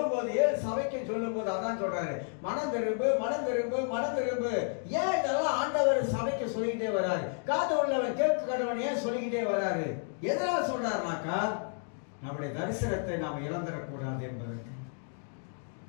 போது, ஏன் சபைக்கு சொல்லும் போது அதான் சொல்றாரு, மனம் திரும்பு, மனம் திரும்பு, மனம் திரும்பு. ஏன் இதெல்லாம் ஆண்டவர் சபைக்கு சொல்லிக்கிட்டே வர்றாரு? காது உள்ளவன் கேட்க கடவன் ஏன் சொல்லிக்கிட்டே வர்றாரு? எதனால சொல்றாருனாக்கா, நம்முடைய தரிசனத்தை நாம் இழந்துடக்கூடாது என்பதற்கு.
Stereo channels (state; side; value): silent; right; 57 dB below the other